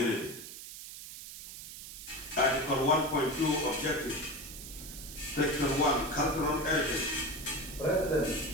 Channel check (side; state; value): right; noise; hiss, 12 dB below the sound